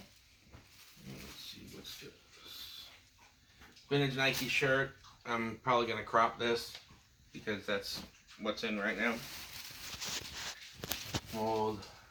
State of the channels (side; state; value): both; identical; correlation 1.00